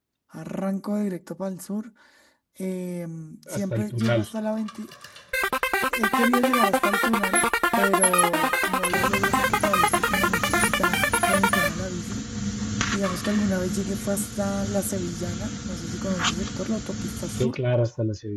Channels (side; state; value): both; identical; correlation 1.00